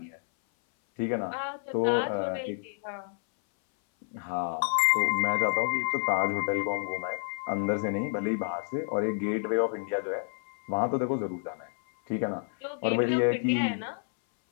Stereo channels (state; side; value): silent; right; 58 dB below the other